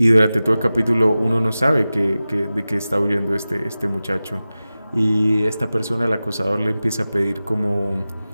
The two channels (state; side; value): inverted; both; correlation -0.96